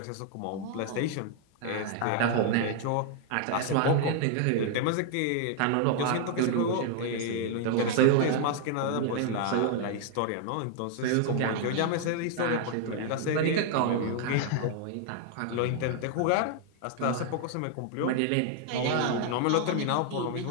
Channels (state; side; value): different; both; correlation 0.00